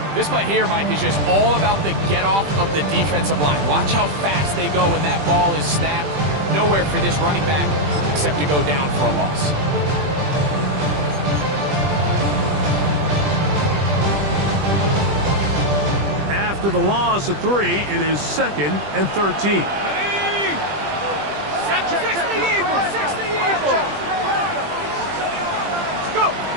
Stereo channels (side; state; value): left; late; 20 ms